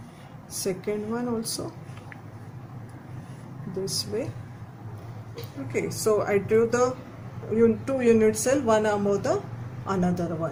second one also, this way. Okay, so I drew the 2 unit cell, one above the another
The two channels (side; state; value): both; identical; correlation 1.00